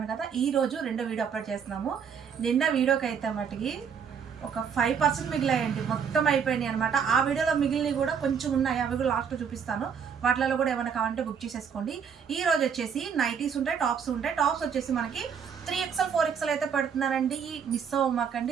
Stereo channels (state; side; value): quieter; left; 7.0 dB